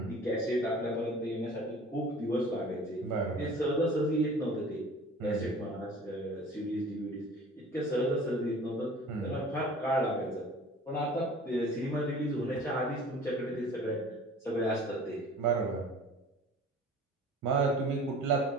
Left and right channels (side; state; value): both; normal; correlation 0.45